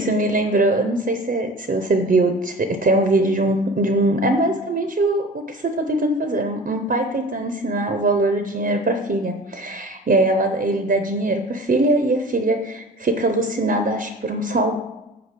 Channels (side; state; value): both; normal; correlation 0.40